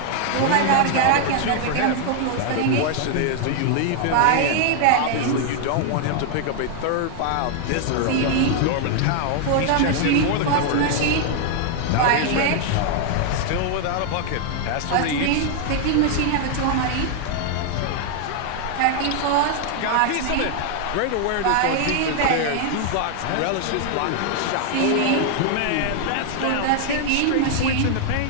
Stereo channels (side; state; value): both; different; correlation 0.00